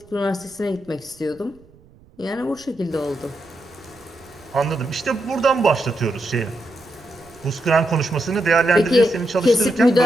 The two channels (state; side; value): noise; right; rumble, 27 dB below the sound